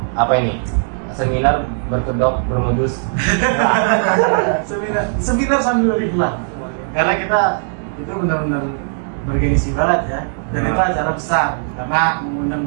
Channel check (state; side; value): silent; left; digital silence